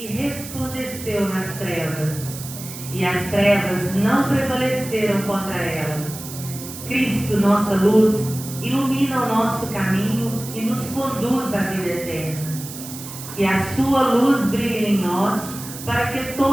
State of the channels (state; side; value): noise; right; hiss, 12 dB below the sound